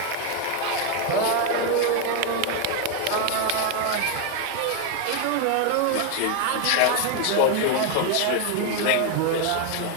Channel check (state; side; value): different; both; correlation 0.01